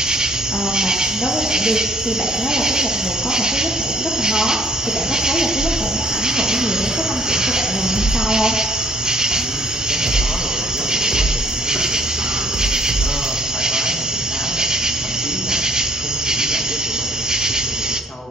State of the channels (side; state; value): both; normal; correlation 0.59